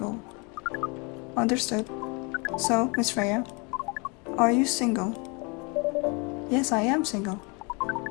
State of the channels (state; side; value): quieter; right; 30.9 dB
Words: Understood. So, Miss Freya, are you single? Yes, I am single.